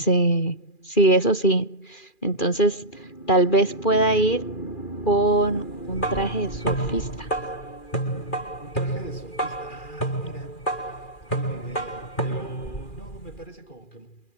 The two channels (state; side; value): late; right; 2.4 ms